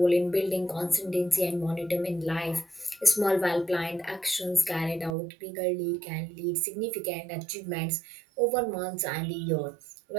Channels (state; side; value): drops out; left; at 5.2 s